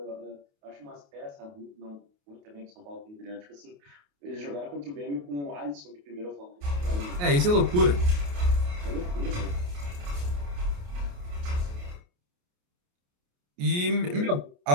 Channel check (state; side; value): late; left; 28 ms